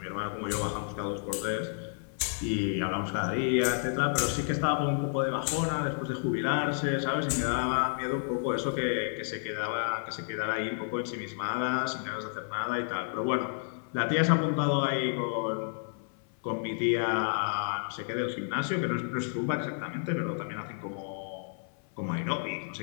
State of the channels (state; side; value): silent; right; 57 dB below the other